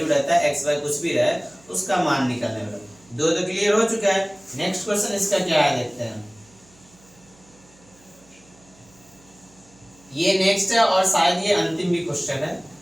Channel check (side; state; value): right; noise; hum, 28 dB below the sound